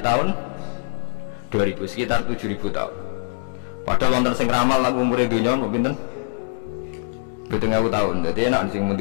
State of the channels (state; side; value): silent; right; digital silence